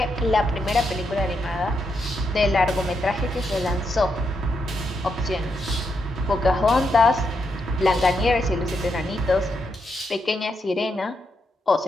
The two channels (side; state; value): both; normal; correlation 0.81